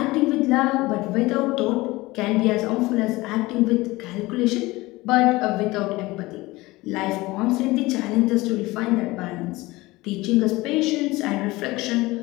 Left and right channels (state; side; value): quieter; right; 20.5 dB